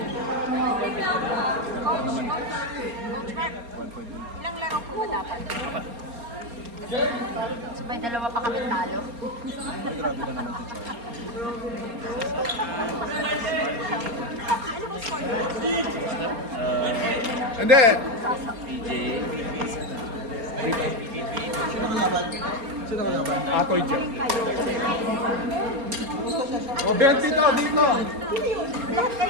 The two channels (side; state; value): left; late; 4.3 ms